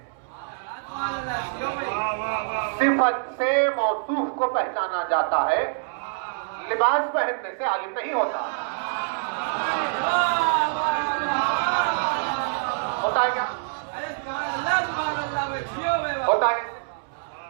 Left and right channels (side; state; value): left; silent; 61 dB below the other